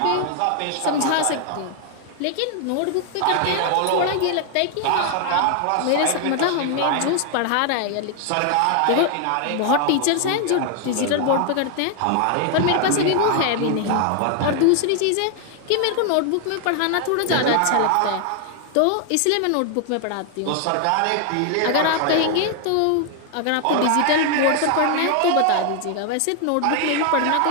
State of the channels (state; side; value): different; both; correlation 0.00